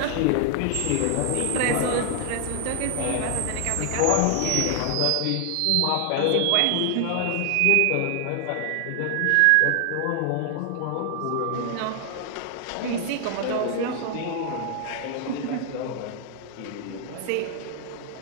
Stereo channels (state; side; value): different; both; correlation 0.00